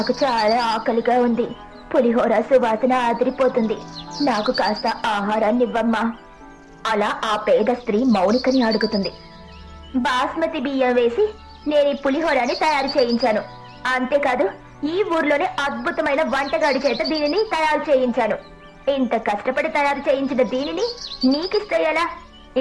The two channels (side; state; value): both; identical; correlation 1.00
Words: చాలా ఆకలిగా ఉంది. పులిహోర సువాసన ఆదిరిపోతుంది. నాకు కాస్త ఆహారాన్ని ఇవ్వమ్మా. అలా ఆ పేద స్త్రీ మౌనికని అడుగుతుంది. బాస్మతి బియ్యం వేసి నేను ఈ పులిహోరాని తయారు చేయించాను. అంతేకాదు ఈ ఊర్లోనే అద్భుతమైన వంటగాడి చేత దీనిని తయారు చేయించాను. ఇంత కష్టపడి తయారు చేయించిన దీనిని నీకిస్తే ఎలా?